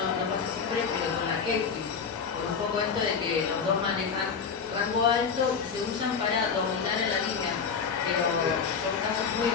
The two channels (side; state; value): right; quieter; 6.0 dB